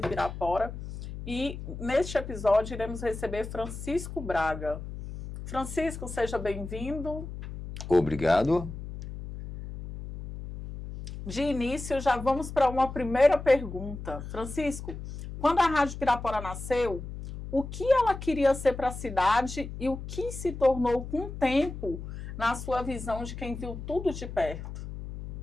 Pirapora e neste episódio iremos receber Francisco Braga. Francisco, seja bem-vindo. Obrigado. De início, já vamos para uma primeira pergunta. Francisco, quando a Rádio Pirapora nasceu, o que ela queria ser para a cidade e o que se tornou com o tempo na sua visão de quem viu tudo de perto?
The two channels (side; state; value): left; noise; hum, 9 dB below the sound